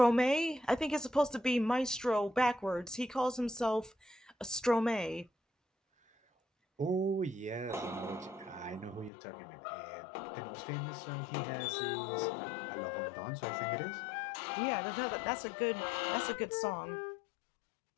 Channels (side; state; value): right; drops out; at 9.1 s